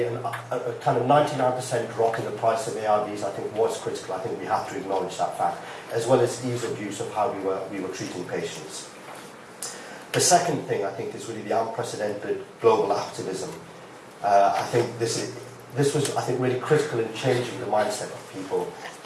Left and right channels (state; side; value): identical; both; correlation 1.00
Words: a kind of 99% drop in the price of ARVs, I think, was critical. I think we have to acknowledge that fact, as well as ease of use of how we were treating patients. The second thing, I think, is really the unprecedented global activism. I think this was, I think, really critical in changing the mindset of people